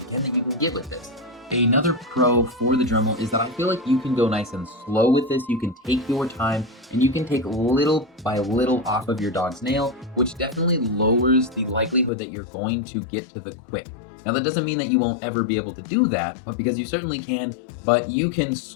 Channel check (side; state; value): right; drops out; at 12.1 s